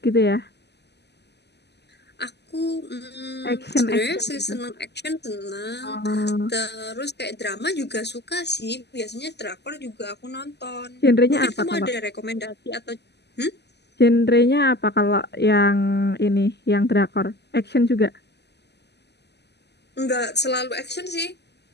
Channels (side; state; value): right; late; 0.49 ms